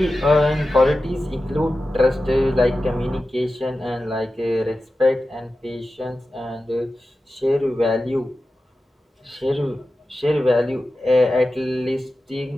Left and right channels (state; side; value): normal; both; correlation 0.93